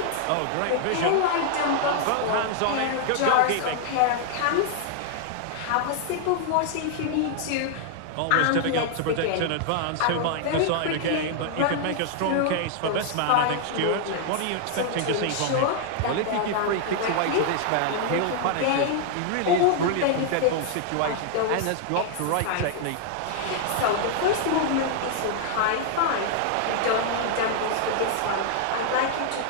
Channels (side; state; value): both; different; correlation 0.00